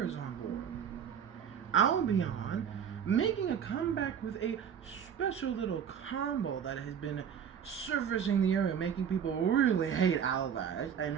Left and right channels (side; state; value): left; quieter; 8.0 dB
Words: on board. Albion making a comeback with a special little combo that has been surfacing the area, making people really hate Albaz and